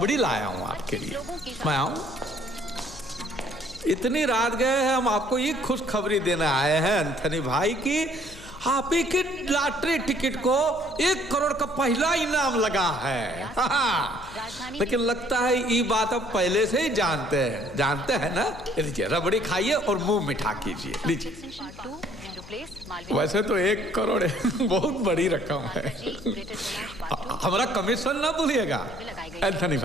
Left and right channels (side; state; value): left; noise; hum, 19 dB below the sound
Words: लाया हूँ आपके लिए। मैं आऊँ? इतनी रात गए हैं, हम आपको ये खुशखबरी देने आए हैं एंथनी भाई की आप ही के लॉटरी टिकट को 1 करोड़ का पहला इनाम लगा है। लेकिन लगता है ये बात आप पहले से ही जानते हैं ना। लीजिए रबड़ी खाइए और मुंह मिठा कीजिए। लीजिए। वैसे तो 1 करोड़ बहुत बड़ी रकम है। हमारा कमीशन ना भूलिएगा एंथनी